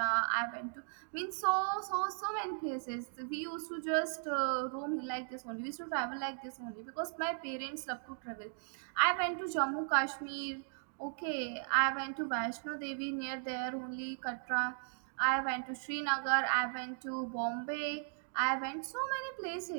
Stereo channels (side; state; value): left; silent; digital silence